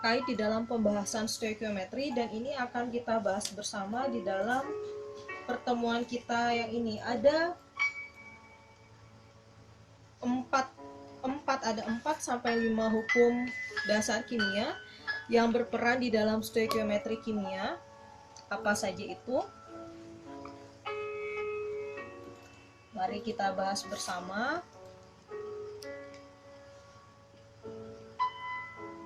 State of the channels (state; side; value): identical; both; correlation 1.00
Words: di dalam pembahasan stoikiometri, dan ini akan kita bahas bersama di dalam pertemuan kita yang ini. Ada 4 sampai 5 hukum dasar kimia yang berperan di dalam stoikiometri kimia. Apa saja itu? Mari kita bahas bersama.